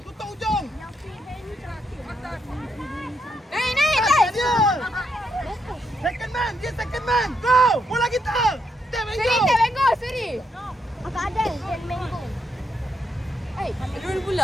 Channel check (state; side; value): normal; both; correlation 0.79